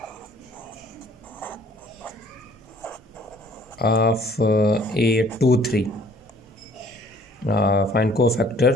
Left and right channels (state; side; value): normal; both; correlation 0.56